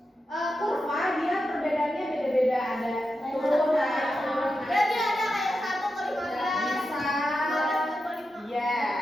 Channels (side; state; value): both; normal; correlation 0.89